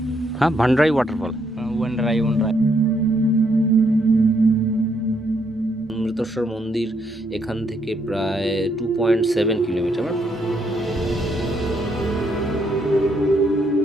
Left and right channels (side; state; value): both; normal; correlation 0.74